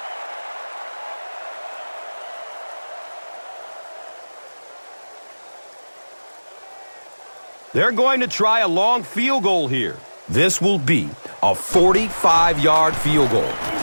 They're going to try a long field goal here. This will be a 45-yard field goal.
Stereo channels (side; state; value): both; inverted; correlation -1.00